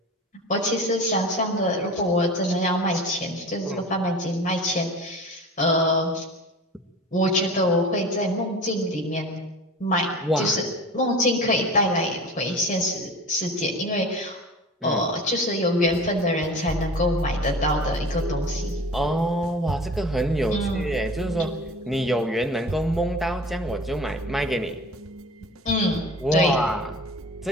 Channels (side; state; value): both; normal; correlation 0.37